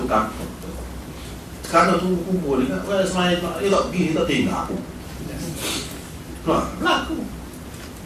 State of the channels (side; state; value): both; identical; correlation 1.00